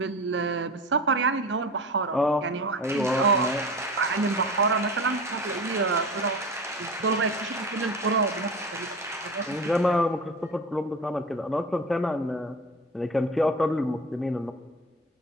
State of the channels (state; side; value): normal; both; correlation 0.32